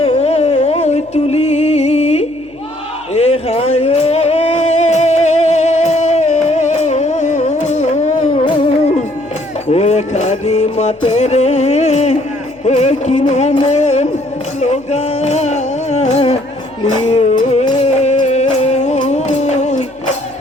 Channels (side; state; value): left; noise; hum, 30 dB below the sound